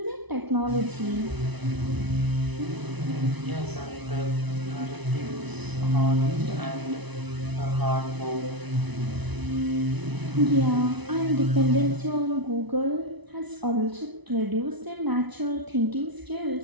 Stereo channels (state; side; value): late; left; 1.0 ms